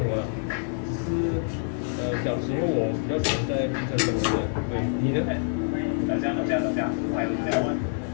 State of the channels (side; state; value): right; silent; 57 dB below the other